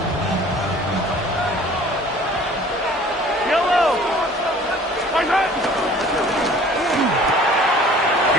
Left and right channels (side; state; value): both; normal; correlation 0.50